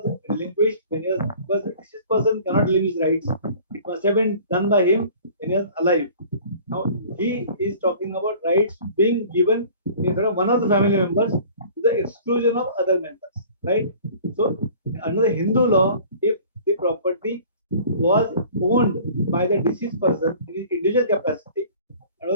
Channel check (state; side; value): inverted; both; correlation -0.47